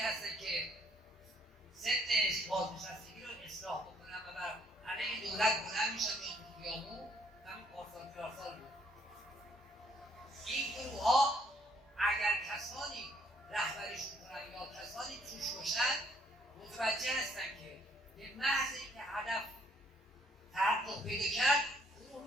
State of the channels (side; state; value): both; normal; correlation 0.66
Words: هستن که سن بازنشستگی رو اصلاح بکنن و بر علیه دولت بلند میشن میان تو خیابون، همین پارسال بود. این گروه‌ها اگر کسانی رهبریشون کنن یا کسانی توش باشن متوجه هستن که به محض اینکه هدف تحقق پیدا کرد گروه